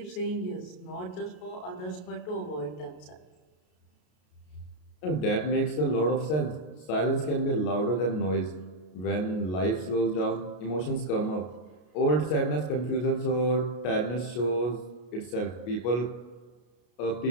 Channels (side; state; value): right; late; 33 ms